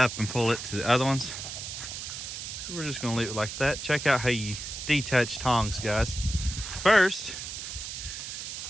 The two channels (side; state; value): right; noise; hiss, 7 dB below the sound